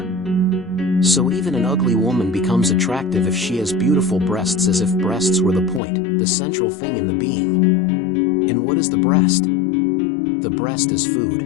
So even an ugly woman becomes attractive if she has beautiful breasts, as if breasts were the point, the central thing in the being. And what is the breast? The breast is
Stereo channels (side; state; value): right; drops out; at 5.8 s